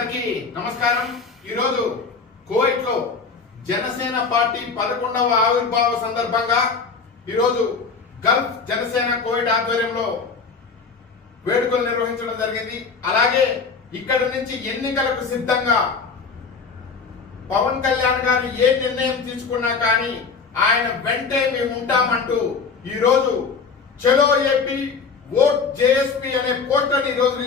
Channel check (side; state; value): right; quieter; 5.1 dB